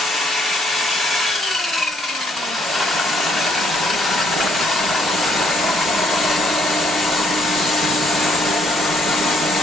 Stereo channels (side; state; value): both; normal; correlation 0.68